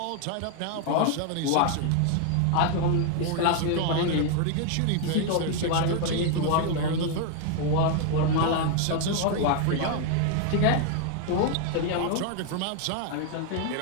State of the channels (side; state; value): both; different; correlation 0.00